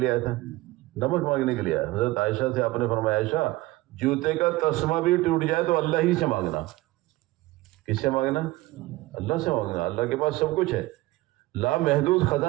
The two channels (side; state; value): left; quieter; 19.2 dB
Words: آیا تھا؟ نمک مانگنے کے لیے آیا۔ حضرت عائشہ سے آپ نے فرمایا عائشہ جوتے کا تسمہ بھی ٹوٹ جائے تو اللہ ہی سے مانگنا۔ کس سے مانگنا؟ اللہ سے مانگنا۔ اللہ کے پاس سب کچھ ہے، لامحدود